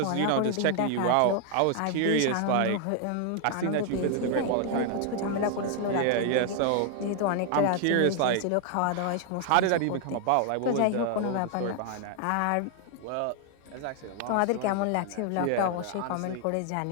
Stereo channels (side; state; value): both; different; correlation 0.00